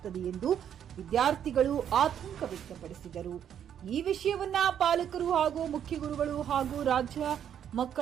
ಎಂದು ವಿದ್ಯಾರ್ಥಿಗಳು ಆತಂಕ ವ್ಯಕ್ತಪಡಿಸಿದರು. ಈ ವಿಷಯವನ್ನ ಪಾಲಕರು ಹಾಗೂ ಮುಖ್ಯ ಗುರುಗಳು ಹಾಗೂ ರಾಜ್ಯ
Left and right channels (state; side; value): quieter; left; 9.3 dB